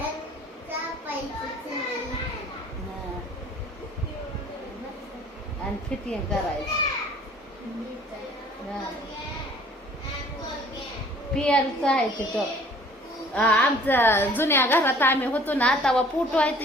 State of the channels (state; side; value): normal; both; correlation 0.52